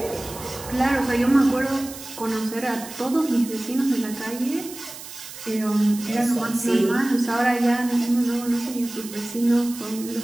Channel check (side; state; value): right; noise; hiss, 13 dB below the sound